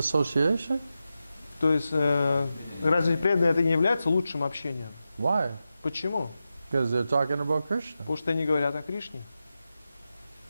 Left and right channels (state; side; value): inverted; both; correlation -0.91